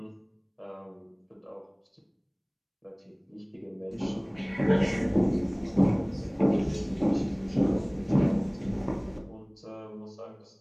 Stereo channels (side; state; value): both; identical; correlation 1.00